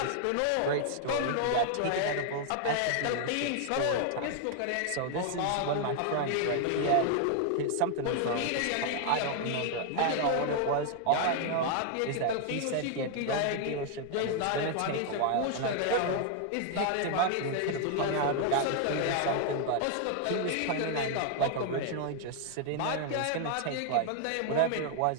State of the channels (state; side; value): different; both; correlation 0.00